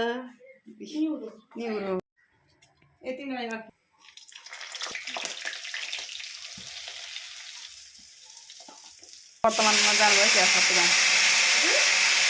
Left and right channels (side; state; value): both; identical; correlation 1.00